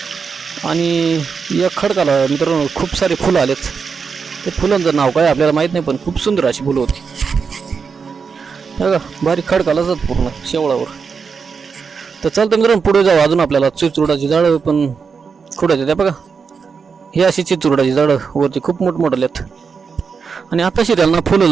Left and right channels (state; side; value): quieter; left; 5.6 dB